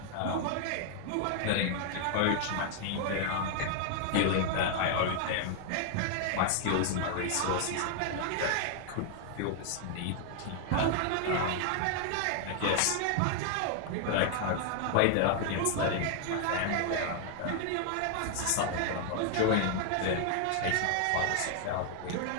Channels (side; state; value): both; different; correlation 0.00